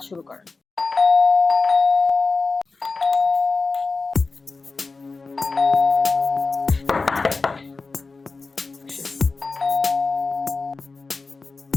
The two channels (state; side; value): quieter; right; 4.0 dB